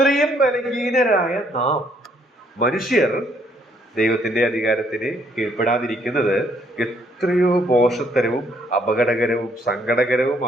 ബലഹീനരായ നാം മനുഷ്യർ ദൈവത്തിന്റെ അധികാരത്തിന് കീഴ്പ്പെടാതിരിക്കുന്നത് എത്രയോ മോശത്തരവും അപകടകരവും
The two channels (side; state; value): both; normal; correlation 0.68